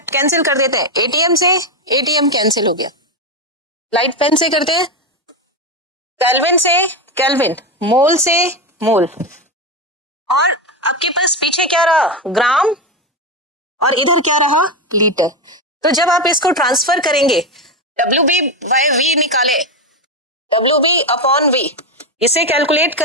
कर देते हैं। एटीएम से एटीएम कैंसिल हो गया, लाइट पेन से करते हैं, केल्विन से केल्विन, मोल से मोल, और आपके पास पीछे क्या रहा? ग्राम, और इधर क्या रहा? लीटर। तो जब आप इसको ट्रांसफर करेंगे, WB/V निकाले, WB/V इसे कैलकुलेट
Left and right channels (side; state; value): both; normal; correlation 0.12